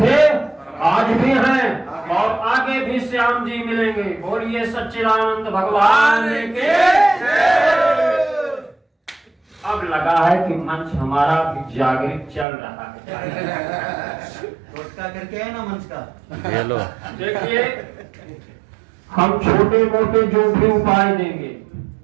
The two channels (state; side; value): drops out; left; at 12.5 s